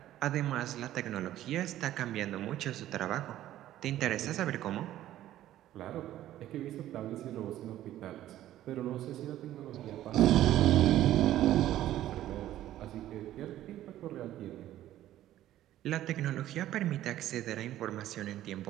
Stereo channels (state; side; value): quieter; left; 13.3 dB